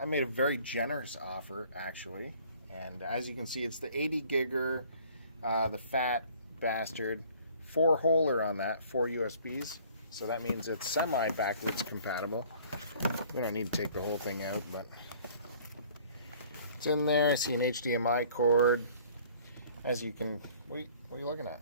made a very generous offer, actually. And as you can see, it's the 80 gigger, the fat bastard, 4-holer on that, 4 USBs. So that means it's semi-backwards compatible. We don't need to take the whole thing out, but it's in there. I see an HDMI cord. As you can, what are you looking at?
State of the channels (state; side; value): inverted; both; correlation -0.54